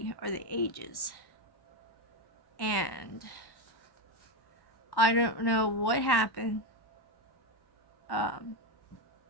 are the ages. And I don't know what happened.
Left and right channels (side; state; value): right; late; 1.1 ms